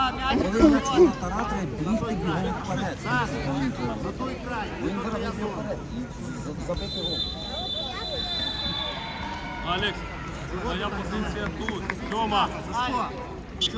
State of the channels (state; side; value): identical; both; correlation 1.00